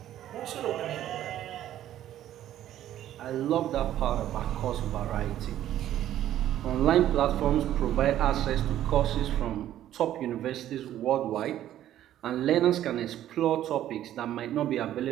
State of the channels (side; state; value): left; quieter; 12.2 dB